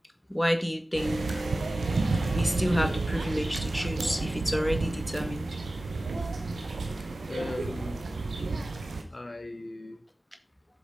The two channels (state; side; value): normal; both; correlation 0.96